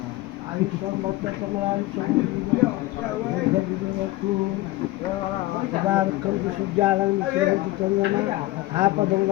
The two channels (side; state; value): right; quieter; 18.3 dB